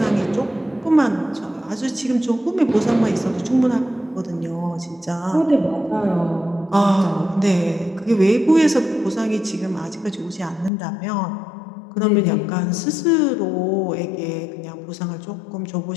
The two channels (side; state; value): right; drops out; at 10.7 s